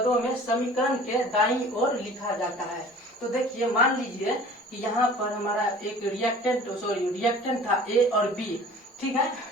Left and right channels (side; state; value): both; normal; correlation 0.46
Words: में समीकरण के दाईं ओर लिखा जाता है। तो देखिए मान लीजिए कि यहाँ पर हमारा एक रिएक्टेंट था ए और बी, ठीक है।